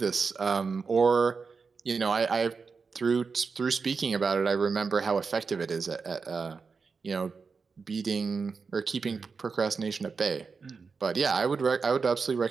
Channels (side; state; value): left; quieter; 5.0 dB